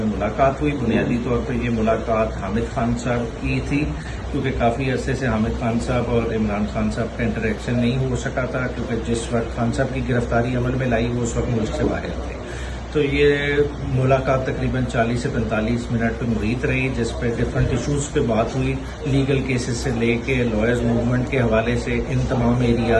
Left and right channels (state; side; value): identical; both; correlation 1.00